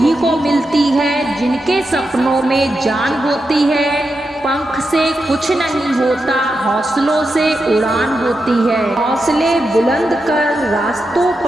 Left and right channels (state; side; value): normal; both; correlation 0.88